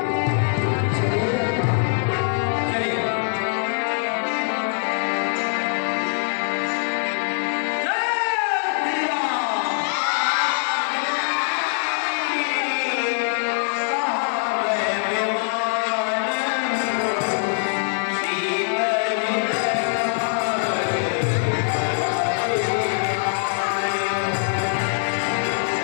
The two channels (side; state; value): right; silent; digital silence